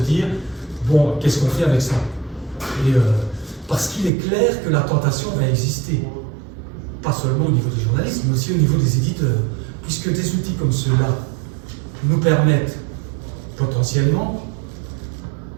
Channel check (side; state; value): left; drops out; at 4.1 s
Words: Bon, qu'est-ce qu'on fait avec ça? Et, parce qu'il est clair que la tentation va exister, pas seulement au niveau des journalistes, mais aussi au niveau des éditeurs, puisque des outils comme ceux-là nous permettent potentiellement,